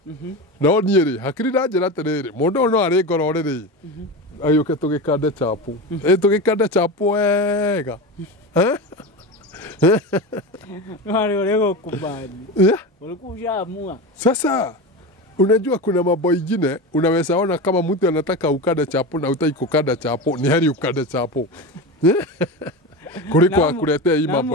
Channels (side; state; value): both; normal; correlation 0.24